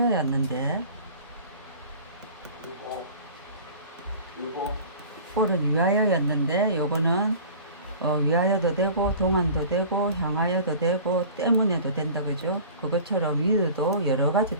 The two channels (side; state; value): both; inverted; correlation -0.42